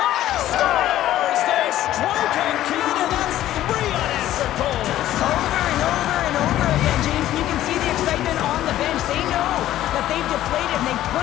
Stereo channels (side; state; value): right; quieter; 13.4 dB